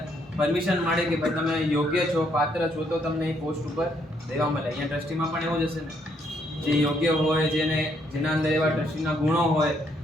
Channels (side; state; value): both; normal; correlation 0.71